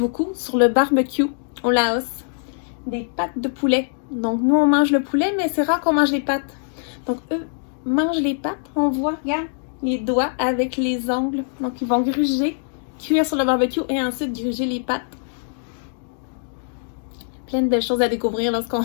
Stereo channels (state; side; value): silent; right; digital silence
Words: sur le barbecue au Laos, des pattes de poulet. Donc nous on mange le poulet, mais c'est rare qu'on mange les pattes. Donc eux mangent les pattes, on voit, regarde, les doigts avec les ongles. Donc ils vont gruger, cuire sur le barbecue et ensuite gruger les pattes. Plein de belles choses à découvrir lorsqu'on